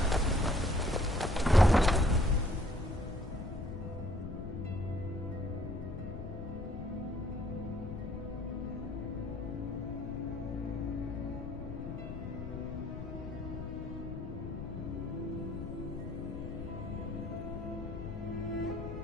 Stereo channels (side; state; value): left; noise; rumble, 7 dB below the sound